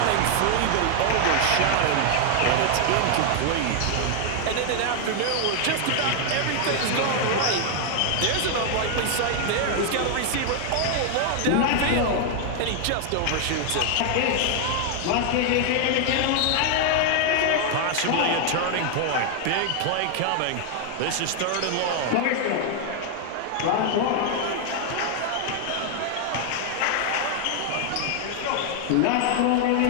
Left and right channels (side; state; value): both; different; correlation 0.00